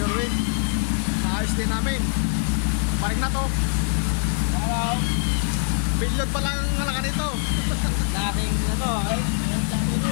naayos din namin. Paring na to. Hello. Billion pa lang ang halaga nito. Dating ano,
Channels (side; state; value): right; silent; 63 dB below the other